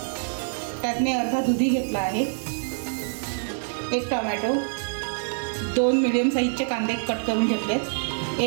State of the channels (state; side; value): silent; left; digital silence